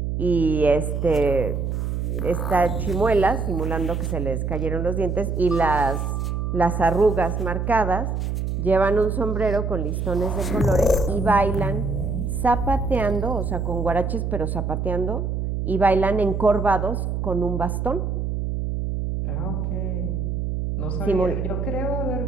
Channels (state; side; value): noise; right; hum, 2 dB below the sound